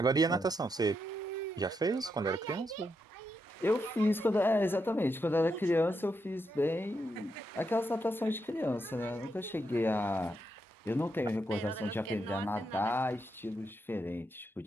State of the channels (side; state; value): both; normal; correlation 0.82